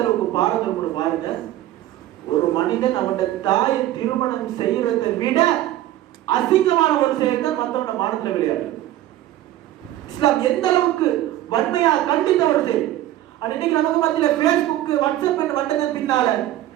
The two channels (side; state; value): left; quieter; 14.0 dB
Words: அளவுக்கு பாரதம் பாருங்க. ஒரு மனிதன் அவனுடைய தாயை திருமணம் செய்யறதை விட அசிங்கமான ஒரு செயல் தான் மற்றவன மானத்துல விளையாடுறது. இஸ்லாம் எந்த அளவுக்கு வன்மையா கண்டித்த ஒரு செயல். இன்னைக்கு நமக்கு மத்தியில Facebook, WhatsApp வந்ததன் பின்னால